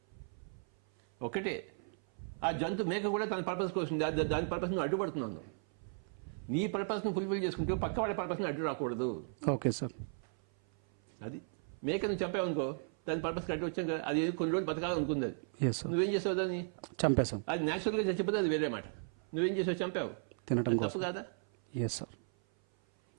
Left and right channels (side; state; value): left; silent; 54 dB below the other